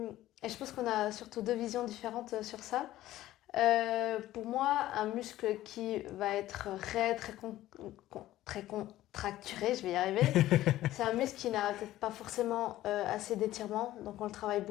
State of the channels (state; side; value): quieter; right; 14.8 dB